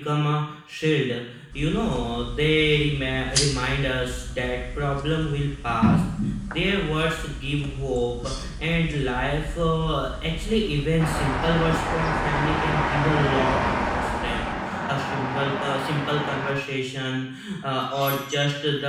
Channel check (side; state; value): both; identical; correlation 1.00